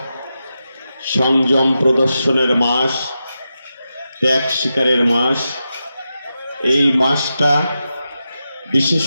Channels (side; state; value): both; inverted; correlation -0.89